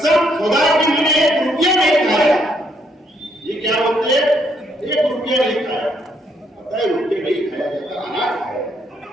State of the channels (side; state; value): both; normal; correlation 0.71